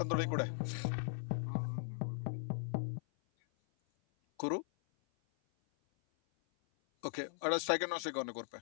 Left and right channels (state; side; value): silent; right; 52 dB below the other